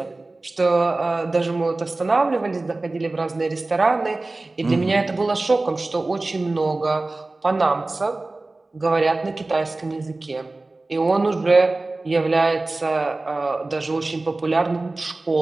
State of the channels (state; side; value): quieter; left; 3.1 dB